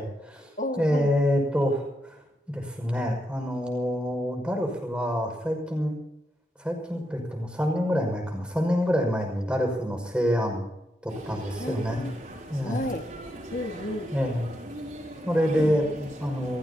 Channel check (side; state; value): both; normal; correlation 0.82